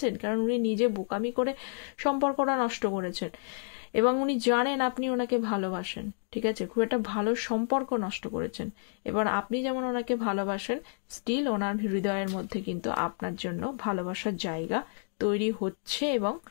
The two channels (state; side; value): silent; right; 58 dB below the other